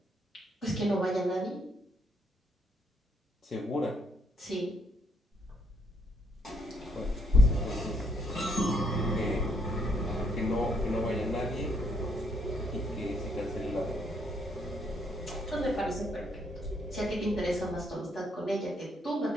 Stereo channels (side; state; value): both; normal; correlation 0.71